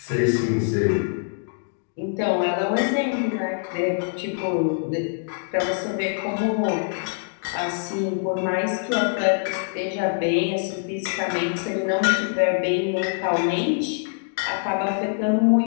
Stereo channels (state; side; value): silent; right; digital silence